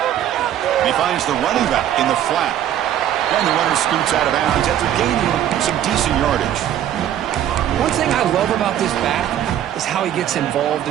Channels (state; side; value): quieter; left; 11.1 dB